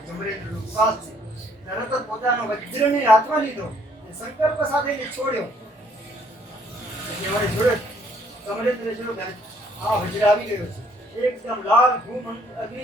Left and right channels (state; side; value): normal; both; correlation 0.64